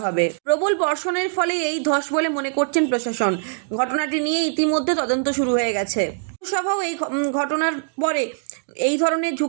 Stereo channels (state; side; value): silent; left; digital silence